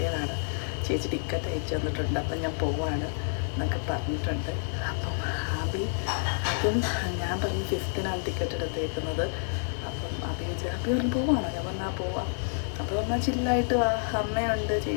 ചേച്ചി ടിക്കറ്റ് അയച്ചു തന്നിട്ടുണ്ട്. അപ്പം ഞാൻ പോവാണ് എന്നൊക്കെ പറഞ്ഞിട്ടുണ്ട്. അപ്പം അതും ഞാൻ പറഞ്ഞു 5th ടിക്കറ്റ് എടുത്തേക്കുന്നത്. അപ്പം അബി പറഞ്ഞു പോവാണോ? ഞാൻ പറഞ്ഞാൽ പോവാം. അപ്പോൾ പറഞ്ഞാൽ ചില്ലായിട്ട് വാ, അമ്മയുണ്ട്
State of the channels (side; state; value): right; silent; digital silence